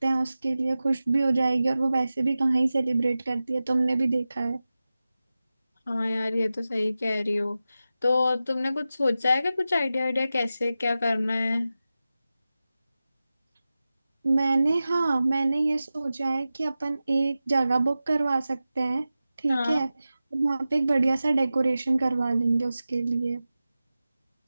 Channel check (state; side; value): inverted; both; correlation -0.94